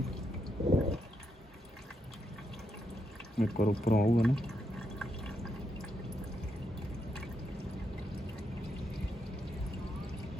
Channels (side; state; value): both; normal; correlation 0.81